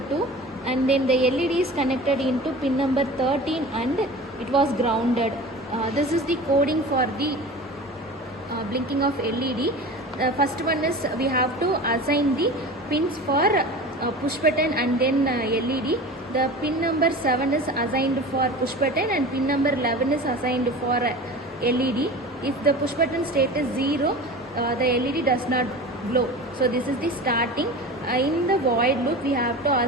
2, and then the LED is connected into pin number 13 and it was grounded. This is the coding for the blinking of LED. First one is we have to assign the pins for push button and then LED. The pin number 7 is assigned for push button and pin number 11 is assigned for LED. If the push button state is 0, the LED does not glow. So this is the starting. In the void loop we have to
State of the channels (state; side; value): normal; both; correlation 0.35